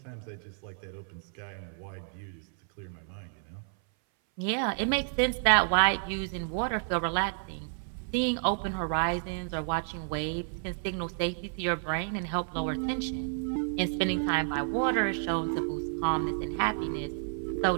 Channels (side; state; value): left; silent; 57 dB below the other